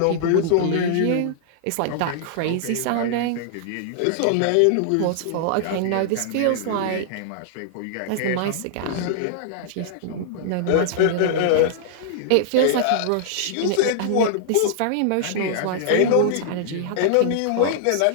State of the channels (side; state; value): both; different; correlation -0.01